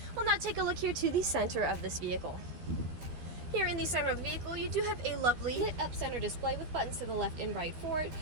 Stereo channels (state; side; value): late; left; 12 ms